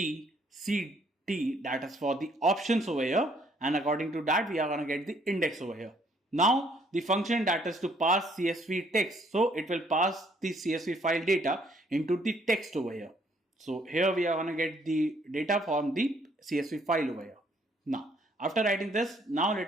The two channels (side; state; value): both; normal; correlation 0.66